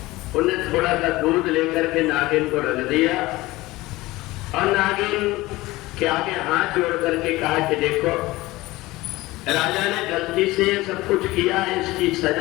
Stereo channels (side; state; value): right; quieter; 19.4 dB